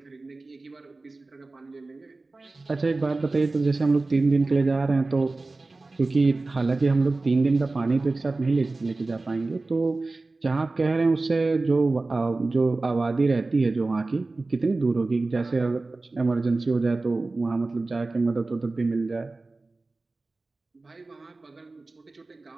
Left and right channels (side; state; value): left; quieter; 3.4 dB